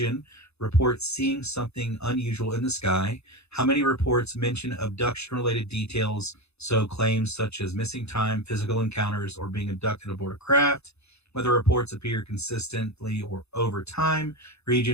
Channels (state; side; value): late; right; 0.79 ms